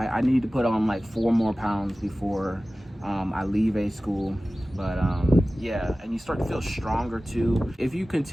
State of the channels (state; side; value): normal; both; correlation 0.97